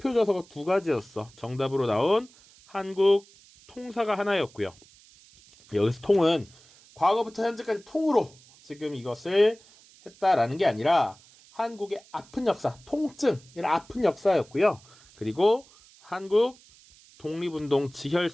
저서가 2가지였어. 정답으로 나온 한국 통사가 하나였고요. 여기서 통은 과거부터 현재까지 통으로 지금 이것을 했다라는 게 아니라 한국의 아픈 역사, 통증, 이런 아픈 역사였고요. 그리고 한국 독립운동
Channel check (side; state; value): right; noise; hiss, 26 dB below the sound